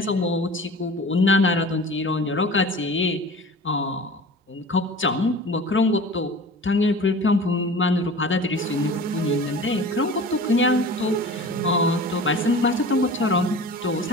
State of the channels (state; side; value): normal; both; correlation 0.39